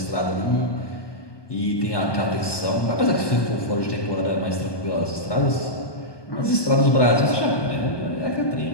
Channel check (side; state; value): right; late; 1.2 ms